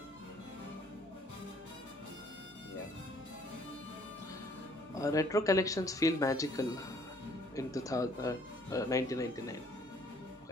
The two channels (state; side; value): normal; both; correlation 0.61